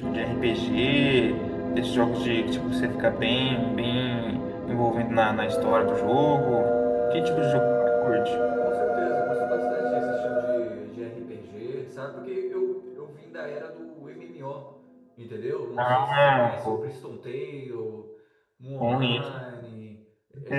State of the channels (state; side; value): identical; both; correlation 1.00